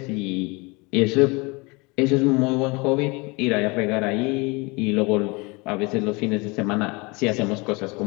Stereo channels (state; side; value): quieter; right; 27.0 dB